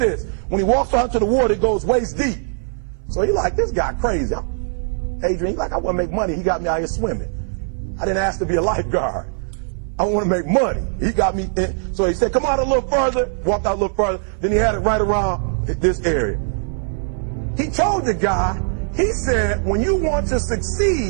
When he walks out into the water, it goes waist deep. So he like, this guy crazy. Adrian, he's like, I want to make money. He got me out here swimming. I didn't ask to be a lifeguard. I want to make money. He got me in. So he said, come out a little further. Walked out a little further. Then he had it right around this area. He told the guy, he said, when you want to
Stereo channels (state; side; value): silent; left; 59 dB below the other